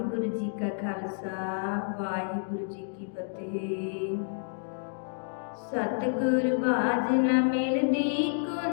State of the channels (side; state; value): right; silent; digital silence